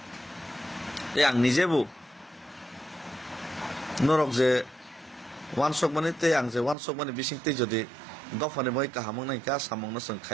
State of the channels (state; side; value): drops out; left; at 6.8 s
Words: ते आं निजेबो नरक जे वान सक माने ते आं जे वान सक माने बिसिंते जदि दफाने मै काहामं नाय का सामं न जों